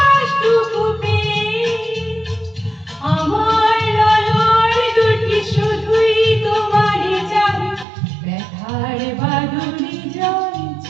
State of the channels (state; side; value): drops out; left; at 7.9 s